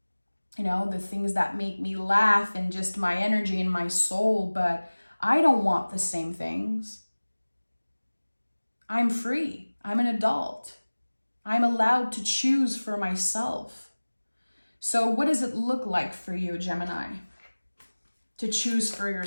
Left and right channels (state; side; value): inverted; both; correlation -1.00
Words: The things that make me laugh and just my energy and my soul, but I don't want the same things. I'm free. I'm an adult. I'm allowed to choose for myself. So what does it look like for you, Gemini, to choose for